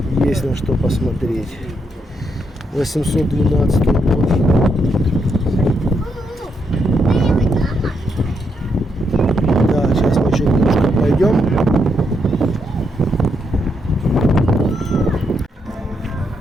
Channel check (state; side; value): normal; both; correlation 0.79